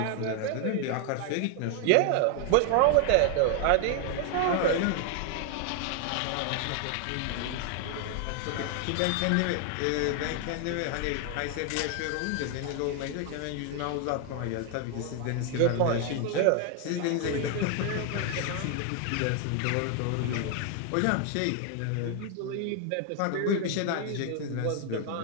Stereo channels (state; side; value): different; both; correlation 0.00